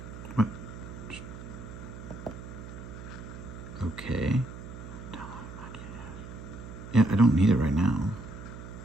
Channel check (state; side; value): noise; right; hum, 12 dB below the sound